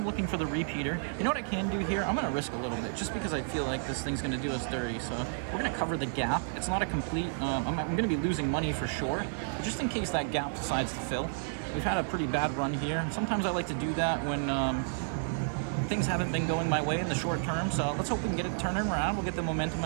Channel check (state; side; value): silent; left; digital silence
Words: looking for the repeater. You know what I can do here? I'm going to risk a little bit just because I feel like this thing's going to do us dirty. So we're going to cover the gap. It's not a complete, I'm going to be losing money for sure. But just in case that gap decides to fill. We've had a pretty bad run here. Sometimes I like to do that when things haven't been going my way in the short term. So let's hope we can get it turning around. We'll get the momentum